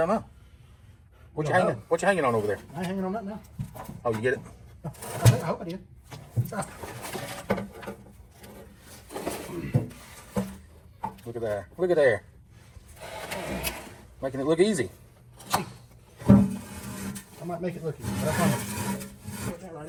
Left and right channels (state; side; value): identical; both; correlation 1.00